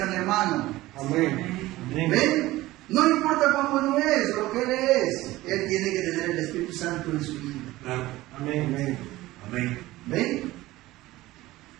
hermano. Amén. Amén. ¿Ven? No importa cuán bueno es, lo que él es, él tiene que tener el Espíritu Santo en su vida. Claro. Amén. Amén. Amén. ¿Ven?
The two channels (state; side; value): quieter; left; 17.6 dB